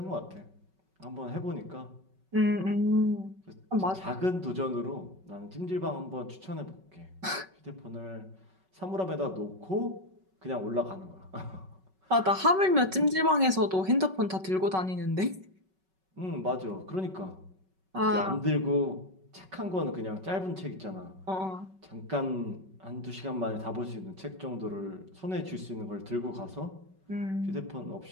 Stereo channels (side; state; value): left; late; 5.3 ms